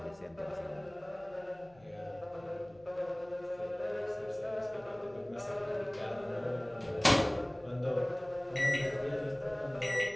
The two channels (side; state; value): left; noise; hum, 27 dB below the sound